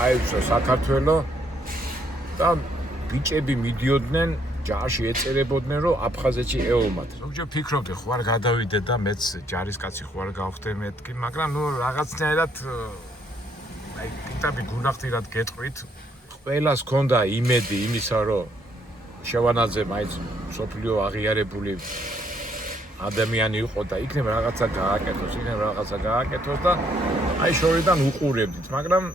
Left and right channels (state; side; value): normal; both; correlation 0.70